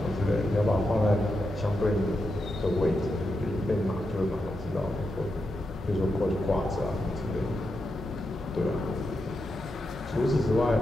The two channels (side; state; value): both; normal; correlation 0.86